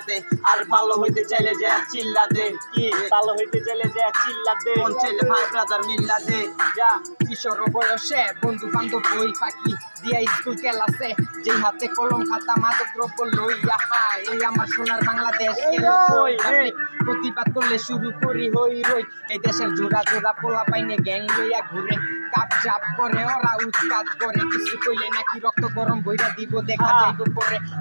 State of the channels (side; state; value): both; inverted; correlation -1.00